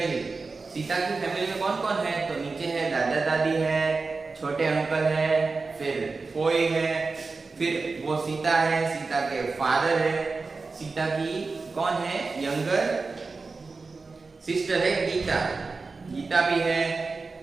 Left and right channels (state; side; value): quieter; left; 4.1 dB